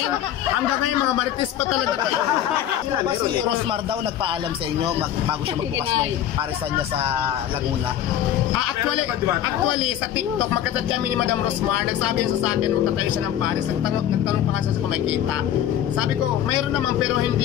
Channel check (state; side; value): quieter; right; 10.9 dB